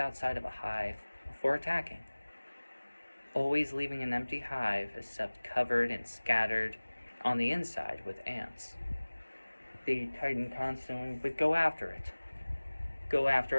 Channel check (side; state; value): both; inverted; correlation -1.00